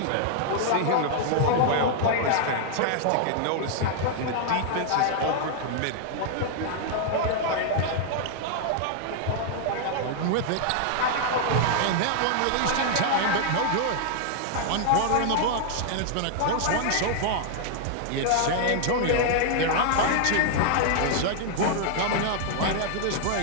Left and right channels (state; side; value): different; both; correlation -0.01